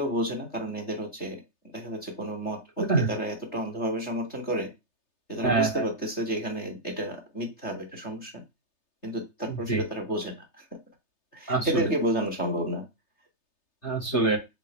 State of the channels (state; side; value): late; right; 3.3 ms